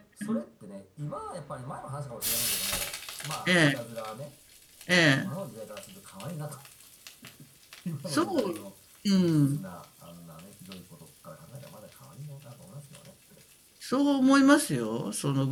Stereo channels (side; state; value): both; identical; correlation 1.00